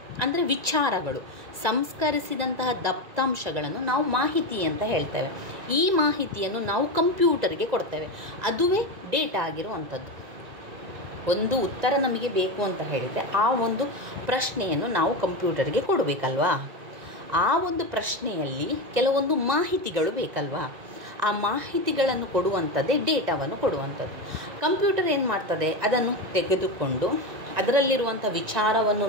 ಅಂದರೆ ವಿಚಾರಗಳು. ಸಂಸ್ಕರಿಸಿದಂತಹ ದತ್ತಾಂಶಗಳನ್ನು ನಾವು ಮಾಹಿತಿ ಅಂತ ಹೇಳ್ತೇವೆ. ಈ ಮಾಹಿತಿಯನ್ನು ನಾವು ಕಂಪ್ಯೂಟರ್ಗೆ ಕೊಡ್ತೇವೆ, ಅದುವೇ ಡೇಟಾ ಆಗಿರುವಂಥದ್ದು. ಒಂದು ಉತ್ತರ ನಮಗೆ ಬೇಕು ಅಂತ ಹೇಳಿದರೆ ಆ ಒಂದು ಪ್ರಶ್ನೆಯನ್ನು ನಾವು ಕಂಪ್ಯೂಟರ್ಗೆ ಕೊಡಬೇಕಲ್ವಾ? ಆ ಒಂದು ಪ್ರಶ್ನೆಯಲ್ಲಿ ಕೆಲವೊಂದು ಮಾಹಿತಿಗಳು ಬೇಕಲ್ವಾ? ಆ ಮಾಹಿತಿಗಳನ್ನು ಕೊಡುವಂಥದ್ದೇ ಡೇಟಾವನ್ನು ಕೊಡುವಂಥದ್ದು. ಕಂಪ್ಯೂಟರ್ ಏನು ಮಾಡ್ತದೆ? ಅದನ್ನು ತೆಗೆದುಕೊಂಡು ಅದರಲ್ಲಿರುವಂಥ ವಿಚಾರವನ್ನು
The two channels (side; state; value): left; late; 1.9 ms